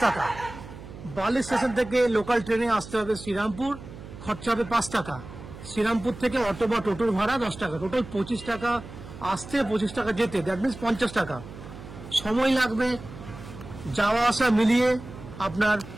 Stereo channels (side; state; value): right; noise; hum, 14 dB below the sound